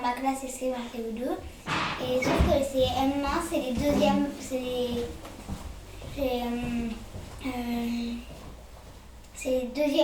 ma classe c'est CE1, CE2 et sauf que les CM1 c'est les deuxièmes, c'est les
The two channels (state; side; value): identical; both; correlation 1.00